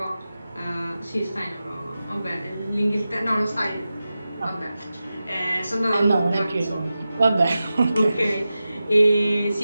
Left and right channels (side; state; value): both; inverted; correlation -0.93